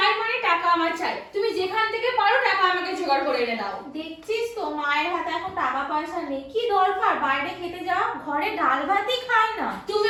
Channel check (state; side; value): identical; both; correlation 1.00